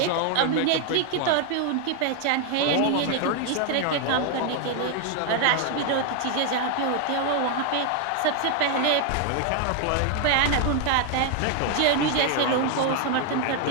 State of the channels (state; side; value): different; both; correlation 0.01